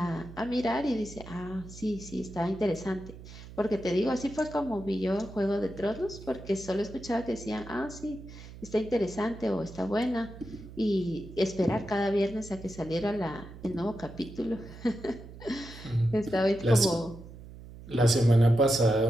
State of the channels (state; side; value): noise; right; hum, 15 dB below the sound